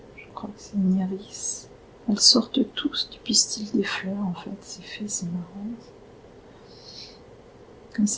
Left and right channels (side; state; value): both; identical; correlation 1.00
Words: Je crois que c'est une iris. Elles sortent tous du pistil des fleurs, en fait. Ces fées, c'est marrant. Comme